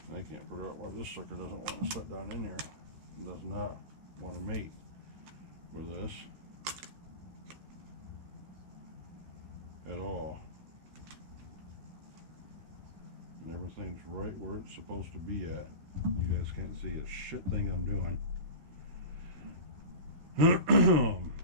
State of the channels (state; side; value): late; left; 13 ms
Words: can't figure out why this sucker doesn't want to sit down in here. It does not want to mate with this at all. And everything's right where it's supposed to be at. You guys can't see a shit thing I'm doing. Yeah,